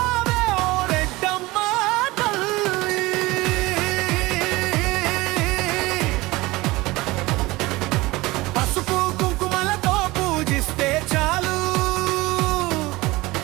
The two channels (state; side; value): quieter; left; 20.8 dB